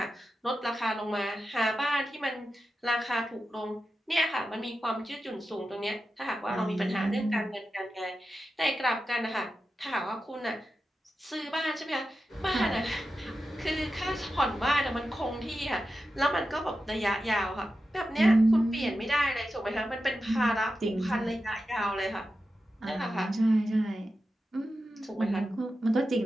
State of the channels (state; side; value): normal; both; correlation 0.91